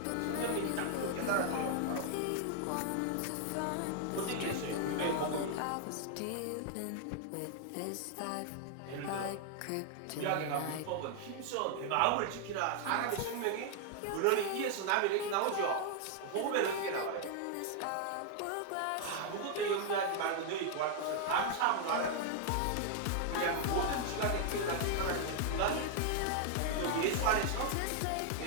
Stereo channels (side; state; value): both; different; correlation 0.00